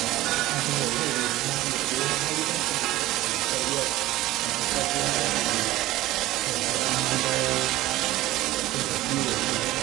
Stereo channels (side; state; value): left; quieter; 16.8 dB